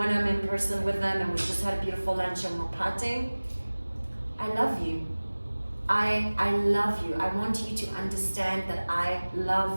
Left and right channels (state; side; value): inverted; both; correlation -1.00